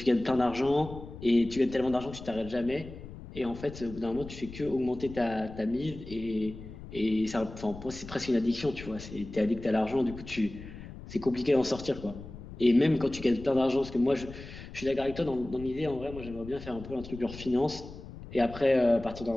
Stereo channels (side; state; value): left; noise; rumble, 13 dB below the sound